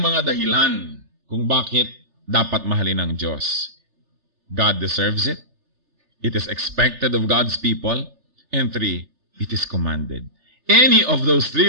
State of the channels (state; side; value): late; left; 3.3 ms